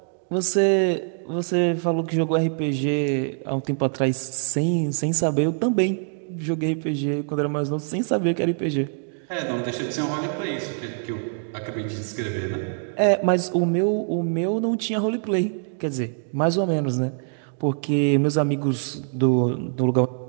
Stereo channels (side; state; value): left; silent; 62 dB below the other